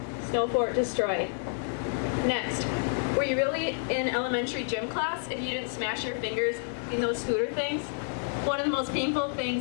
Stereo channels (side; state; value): right; silent; digital silence